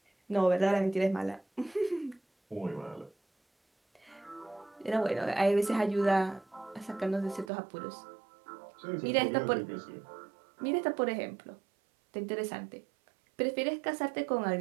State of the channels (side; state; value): left; drops out; at 7.5 s